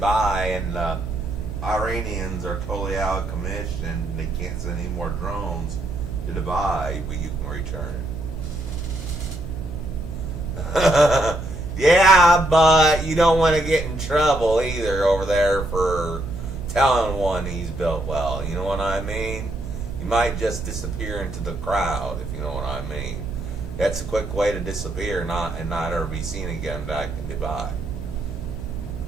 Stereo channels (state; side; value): noise; right; hum, 10 dB below the sound